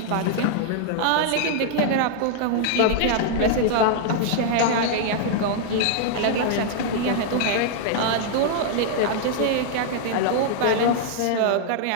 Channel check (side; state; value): both; different; correlation -0.01